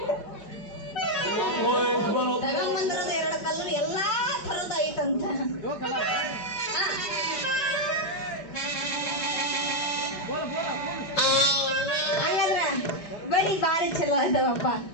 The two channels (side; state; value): right; late; 5.1 ms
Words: ತಗೊಂಬಂದಿರೋದು 2 ಕಲರ್ ಎಲ್ಲಾ ಥರದ ಐತಂತ. ಹಾಗಾದ್ರ ಬಳಿ ಬಾರಿ ಚಲೋ ಅದಾವಪ್ಪ.